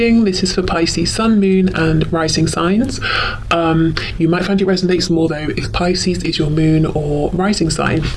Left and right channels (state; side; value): identical; both; correlation 1.00